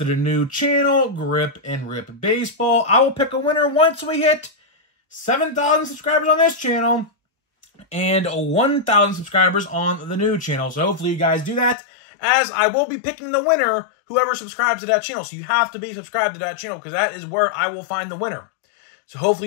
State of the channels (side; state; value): right; drops out; at 11.8 s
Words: the new channel, Grip and Rip Baseball. I will pick a winner once we hit 7,000 subscribers on this channel and 1,000 subscribers on the new channel. So hopefully you guys do that, as I will be picking the winner, whoever subscribes to that channel. So you have to be subscribed to that channel because that is where I will find the winner. So hopefully